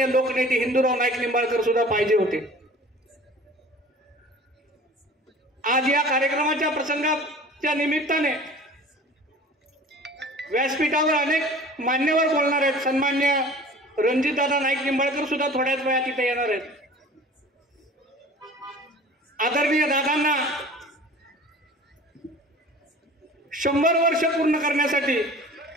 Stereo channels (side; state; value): both; normal; correlation 0.44